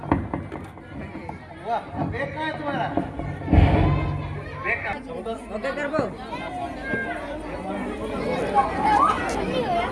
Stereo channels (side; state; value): both; identical; correlation 1.00